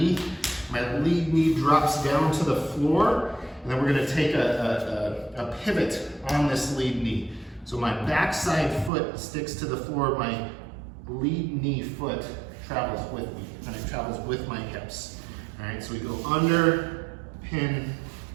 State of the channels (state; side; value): drops out; left; at 8.9 s